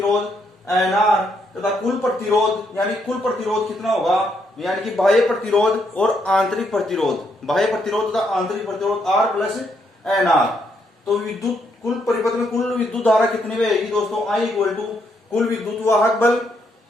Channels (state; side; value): normal; both; correlation 0.75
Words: एन आर तथा कुल प्रतिरोध यानी कुल प्रतिरोध कितना होगा, यानी कि बाह्य प्रतिरोध और आंतरिक प्रतिरोध, बाह्य प्रतिरोध तथा आंतरिक प्रतिरोध आर प्लस एन आर। तो विद्युत कुल परिपथ में कुल विद्युत धारा कितनी बहेगी दोस्तों, आई इक्वल टू कुल विद्युत वाहक बल